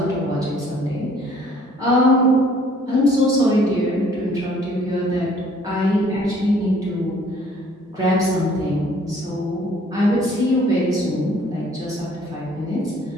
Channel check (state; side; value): normal; both; correlation 0.58